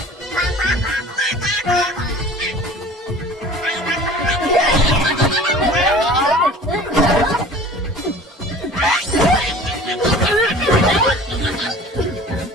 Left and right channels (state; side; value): normal; both; correlation 0.44